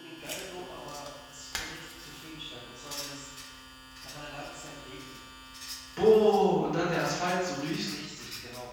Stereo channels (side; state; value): both; identical; correlation 1.00